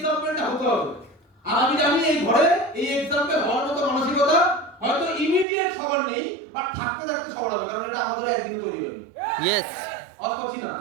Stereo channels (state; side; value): drops out; left; at 5.5 s